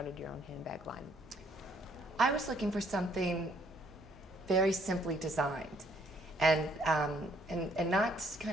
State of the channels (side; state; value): both; normal; correlation 0.66